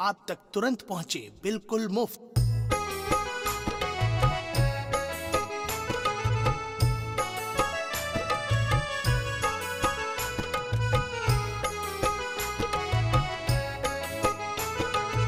तक तुरंत पहुंचे बिल्कुल मुफ्त।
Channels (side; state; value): both; identical; correlation 1.00